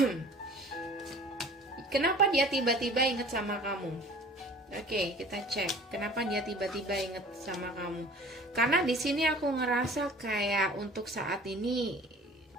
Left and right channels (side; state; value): both; normal; correlation 0.46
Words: Kenapa dia tiba-tiba inget sama kamu? Oke, kita cek kenapa dia tiba-tiba inget sama kamu. Karena di sini aku ngerasa kayak untuk saat ini